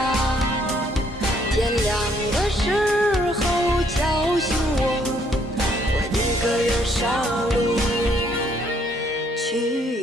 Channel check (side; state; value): both; normal; correlation 0.67